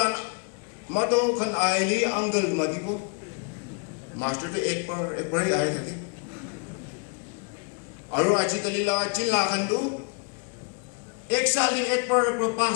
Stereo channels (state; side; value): quieter; right; 34.7 dB